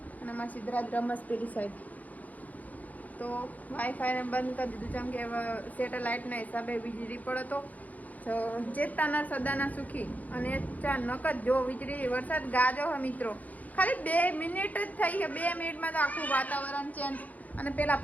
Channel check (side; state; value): right; late; 0.077 ms